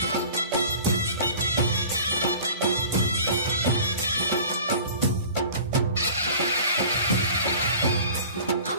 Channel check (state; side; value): inverted; both; correlation -0.43